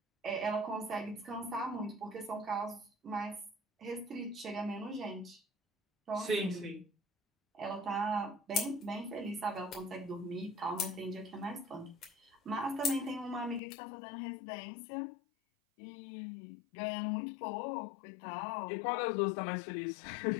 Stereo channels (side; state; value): right; drops out; at 13.6 s